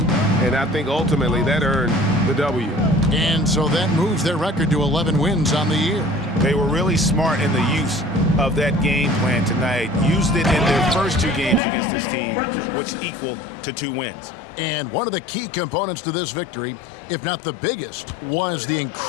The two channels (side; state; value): right; drops out; at 11.6 s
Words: And I think ultimately that earned the W. And so that moves their record to 11 wins on the year. They were really smart in the use of that game plan tonight. Used it in their first 2 games against this team, which equaled to 2 wins. And one of the key components to this victory, if not the biggest, was the